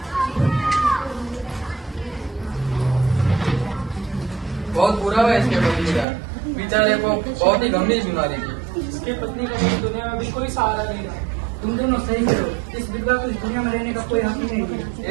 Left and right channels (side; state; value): left; drops out; at 6.1 s